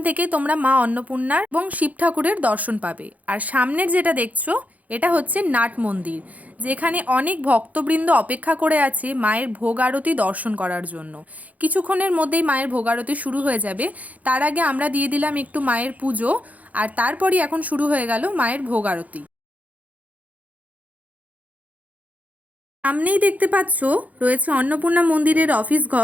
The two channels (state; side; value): late; left; 0.074 ms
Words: থেকে তোমরা মা অন্নপূর্ণার এবং শিব ঠাকুরের দর্শন পাবে। আর সামনের যেটা দেখছো, এটা হচ্ছে নাট মন্দির, যেখানে অনেক ভক্তবৃন্দ অপেক্ষা করে আছে মায়ের ভোগ আরতি দর্শন করার জন্য। কিছুক্ষণের মধ্যেই মায়ের ভোগ আরতি শুরু হয়ে যাবে। তার আগে আমরা দিয়ে দিলাম একটু মায়ের পুজো, আর তারপরই এখন শুরু হয়ে গেল মায়ের ভোগ আরতি। সামনেই দেখতে পাচ্ছ রয়েছে অন্নপূর্ণা মন্দিরের অফিস